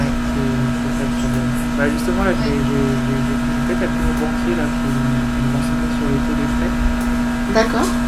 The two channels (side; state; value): both; identical; correlation 1.00